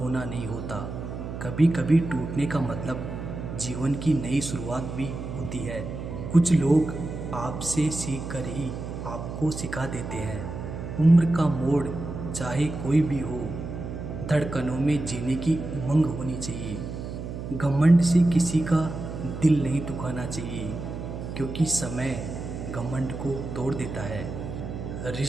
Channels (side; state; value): right; noise; hum, 7 dB below the sound